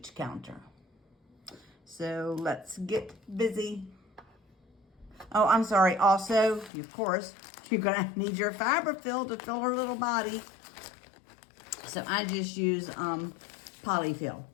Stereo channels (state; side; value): drops out; right; at 6.7 s